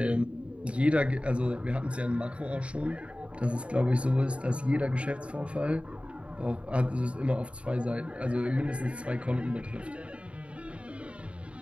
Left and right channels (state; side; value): late; left; 0.061 ms